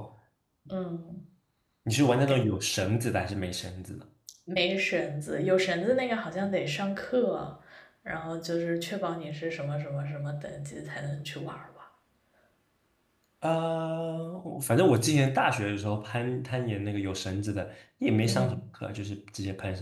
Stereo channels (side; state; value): both; identical; correlation 1.00